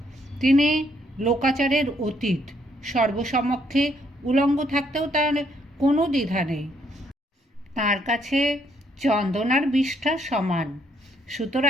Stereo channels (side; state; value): both; normal; correlation 0.70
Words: তিনি লোকাচারের অতীত, সর্বসমক্ষে উলঙ্গ থাকতেও তার কোনো দ্বিধা নেই। তার কাছে চন্দনার বিষ্ঠা সমান।